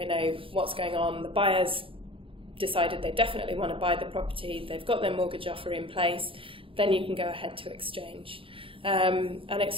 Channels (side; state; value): left; late; 0.26 ms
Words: know what's going on, the buyer's decided they definitely want to buy the property, they've got their mortgage offer in place, then you can go ahead to exchange. An